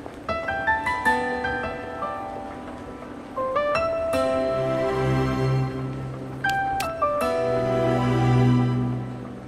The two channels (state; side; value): identical; both; correlation 1.00